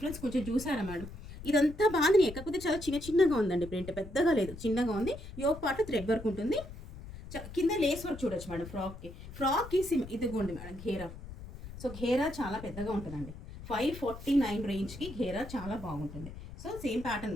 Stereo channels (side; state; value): left; noise; rumble, 13 dB below the sound